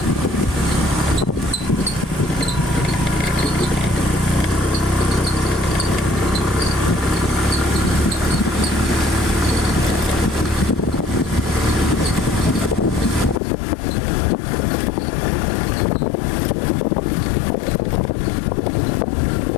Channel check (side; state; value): right; drops out; at 13.4 s